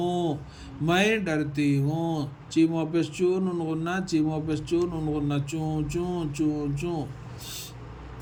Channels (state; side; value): identical; both; correlation 1.00